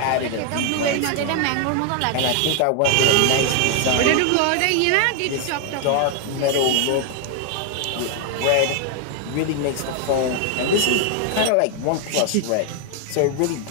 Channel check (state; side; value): different; both; correlation 0.00